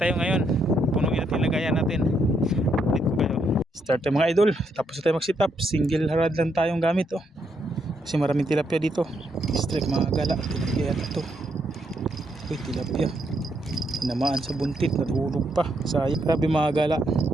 ngayon. Punuin natin lagayan natin. Start tayo mga idol, tapos tayo mag sit up. Single harad lang tayong gamit oh. Kasi maraming tilapia dito. Strike mga gala, tilapia yata to. Uy, tilapia tinamaan sa buntit, natulog pa, sayang. Grabe mga gala,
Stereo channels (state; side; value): normal; both; correlation 0.76